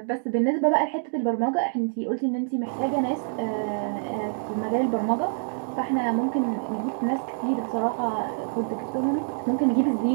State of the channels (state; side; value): silent; left; digital silence